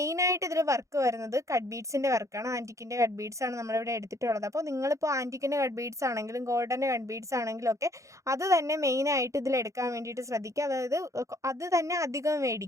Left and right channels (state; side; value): late; left; 0.15 ms